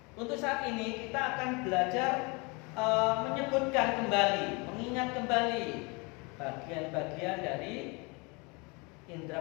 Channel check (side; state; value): right; quieter; 29.0 dB